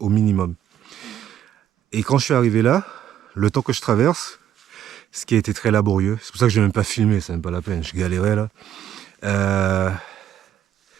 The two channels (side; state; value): left; quieter; 10.5 dB